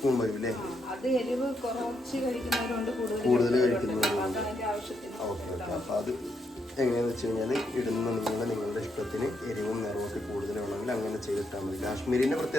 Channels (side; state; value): both; normal; correlation 0.79